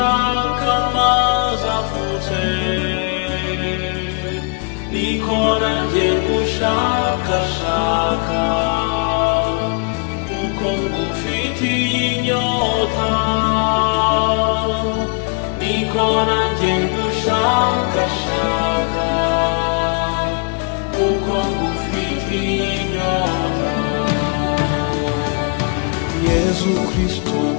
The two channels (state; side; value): quieter; right; 35.1 dB